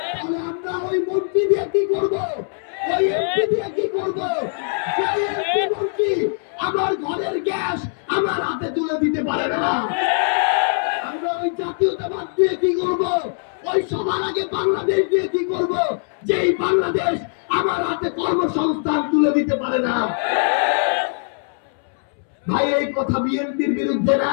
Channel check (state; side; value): silent; right; 65 dB below the other